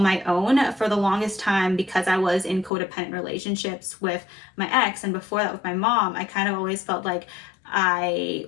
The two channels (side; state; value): right; drops out; at 2.7 s